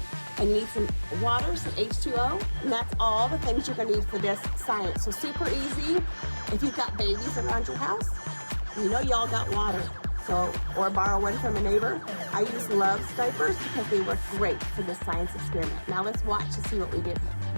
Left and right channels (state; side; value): inverted; both; correlation -1.00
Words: And you need some water, some H2O, and that's all the things you're going to need for this science. So super easy. If you've got babies around your house, you know y'all got water. So, or borrow one from a neighbor. I use Love's diapers because they work great for this science experiment. Now let's watch to see what we do.